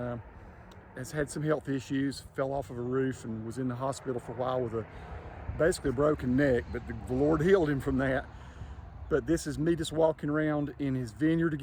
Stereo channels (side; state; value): both; identical; correlation 1.00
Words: has had some health issues, fell off of a roof and was in the hospital for a while with basically a broken neck, but the Lord healed him from that. But this is me just walking around in his vineyard